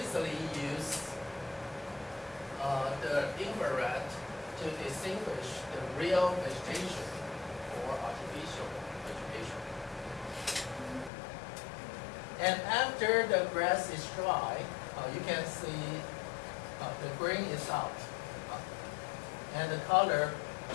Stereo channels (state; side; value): drops out; right; at 11.1 s